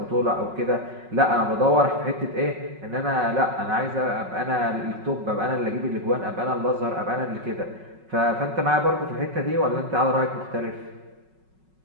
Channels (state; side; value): late; left; 5.4 ms